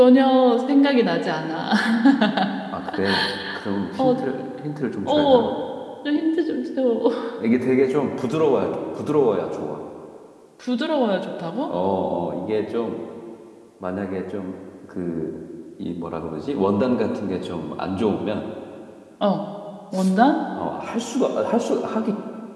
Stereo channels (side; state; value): both; identical; correlation 1.00